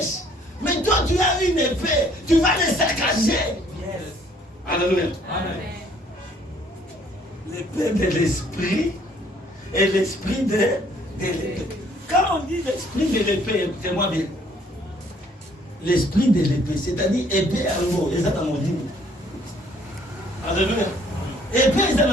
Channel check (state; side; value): normal; both; correlation 0.61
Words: mais toi tu as une épée, tu vas les saccager. Yes. Alléluia. Amen. L'épée de l'esprit et l'esprit de l'épée. Quand on dit l'esprit de l'épée, écoutez-moi bien. L'esprit de l'épée, c'est-à-dire épée à l'eau, et ça dans mon livre. Alléluia. Épée, c'est